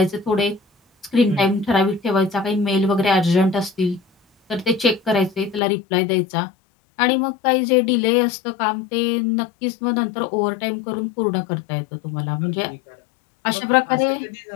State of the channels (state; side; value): drops out; right; at 5.6 s